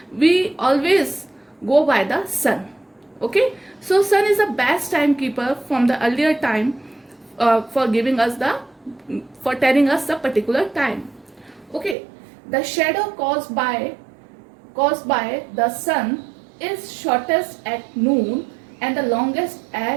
we always go by the sun. Okay, so sun is the best timekeeper from the earlier time, for giving us the, for telling us the particular time. Okay, the shadow caused by the sun is shortest at noon and the longest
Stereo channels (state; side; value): drops out; left; at 12.0 s